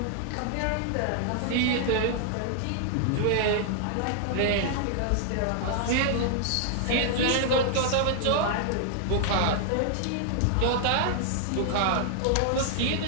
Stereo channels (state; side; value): different; both; correlation -0.01